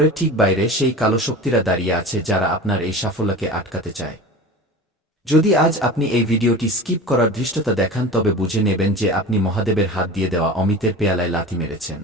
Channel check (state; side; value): normal; both; correlation 0.34